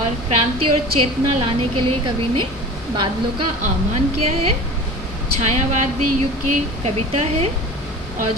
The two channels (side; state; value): both; normal; correlation 0.37